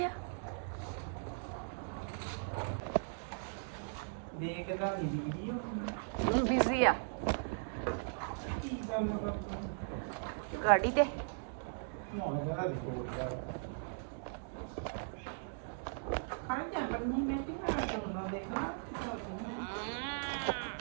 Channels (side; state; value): left; silent; digital silence